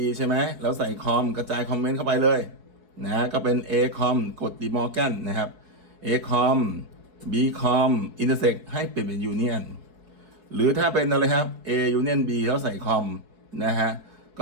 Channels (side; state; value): left; late; 4.7 ms